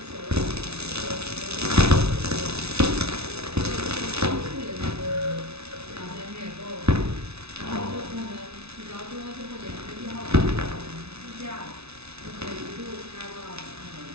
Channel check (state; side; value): late; left; 0.80 ms